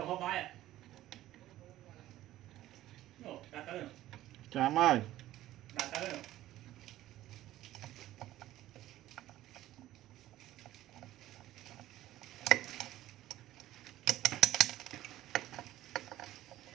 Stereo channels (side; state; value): left; quieter; 14.6 dB